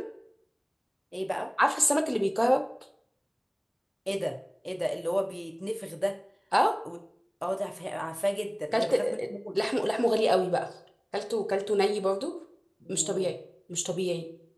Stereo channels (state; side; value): identical; both; correlation 1.00